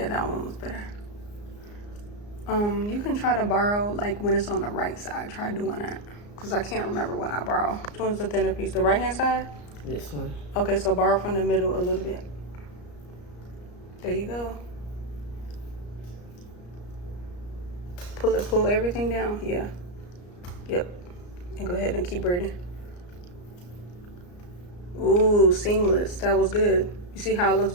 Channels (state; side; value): late; right; 34 ms